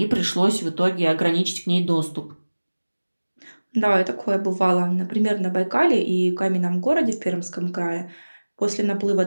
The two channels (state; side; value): inverted; both; correlation -1.00